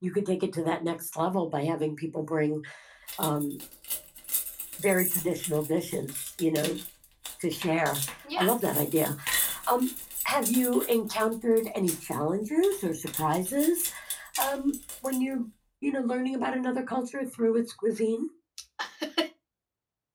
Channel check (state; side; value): identical; both; correlation 1.00